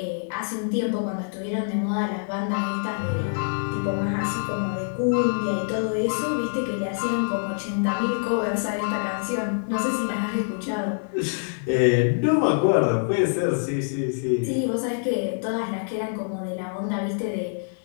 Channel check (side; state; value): right; silent; digital silence